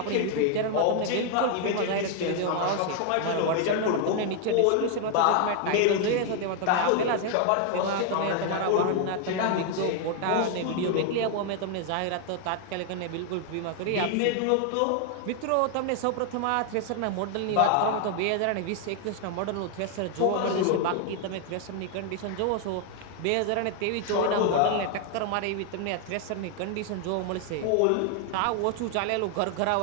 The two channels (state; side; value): different; both; correlation 0.00